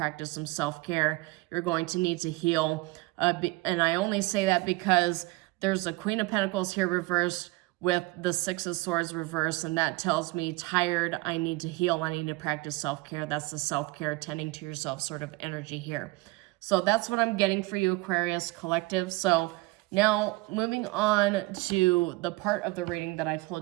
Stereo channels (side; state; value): left; quieter; 22.4 dB